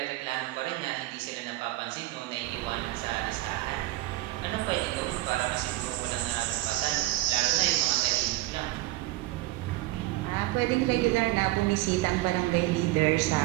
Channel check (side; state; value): left; quieter; 17.8 dB